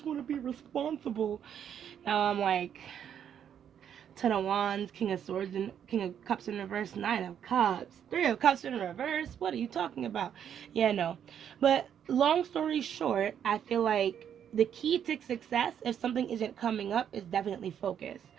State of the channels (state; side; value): quieter; left; 8.9 dB